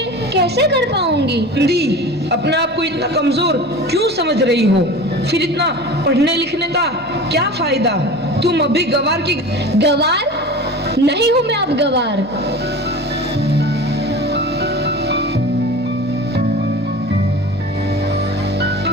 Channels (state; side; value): normal; both; correlation 0.35